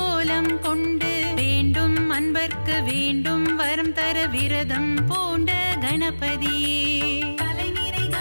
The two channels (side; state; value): both; inverted; correlation -1.00